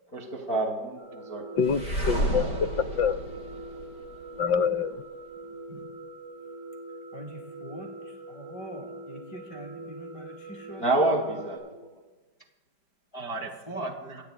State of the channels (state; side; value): late; right; 5.1 ms